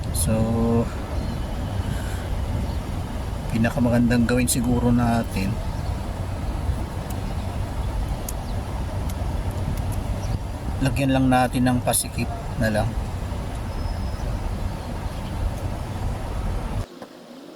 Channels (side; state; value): both; identical; correlation 1.00